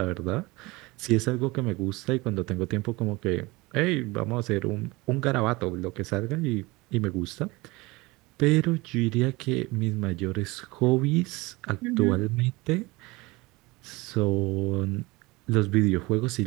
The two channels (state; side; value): quieter; left; 22.9 dB